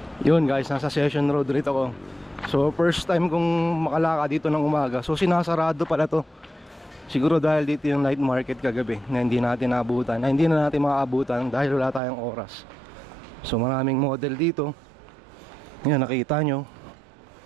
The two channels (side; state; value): left; drops out; at 12.0 s